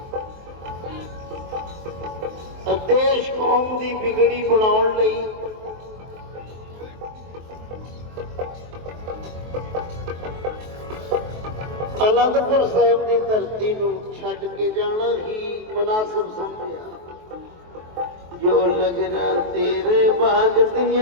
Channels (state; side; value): late; left; 23 ms